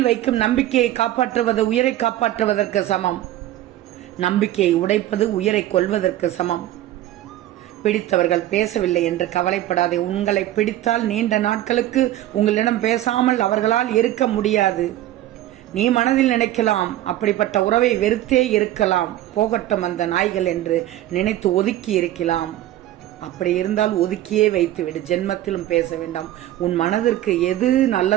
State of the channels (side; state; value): left; quieter; 13.9 dB